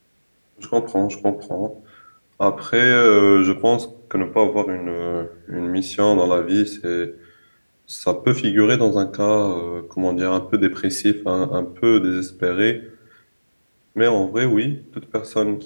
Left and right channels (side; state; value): both; inverted; correlation -1.00